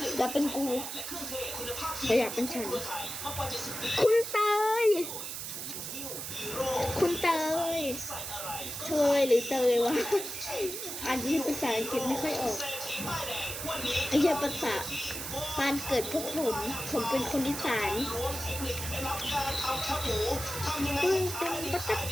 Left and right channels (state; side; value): noise; right; hiss, 6 dB below the sound